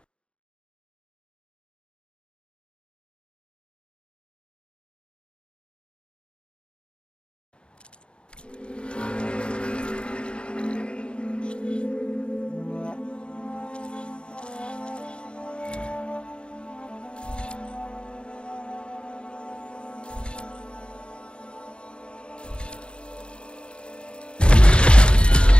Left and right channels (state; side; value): late; right; 0.055 ms